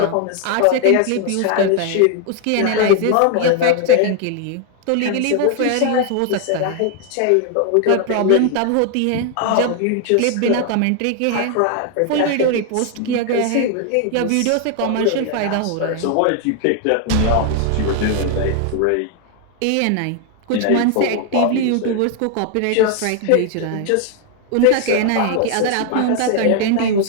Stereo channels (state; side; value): different; both; correlation 0.00